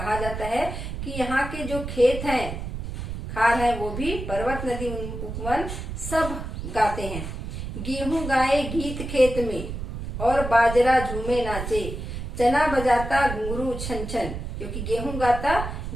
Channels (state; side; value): noise; right; rumble, 7 dB below the sound